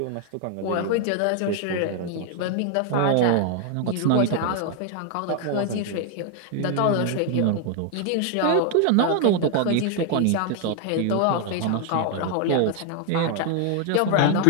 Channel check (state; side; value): different; both; correlation 0.00